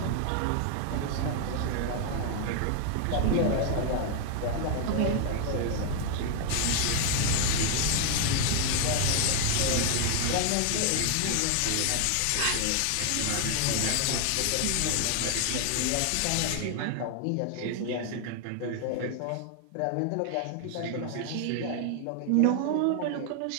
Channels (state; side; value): different; both; correlation 0.00